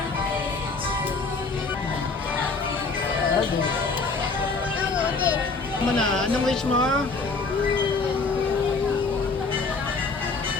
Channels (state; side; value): quieter; right; 4.1 dB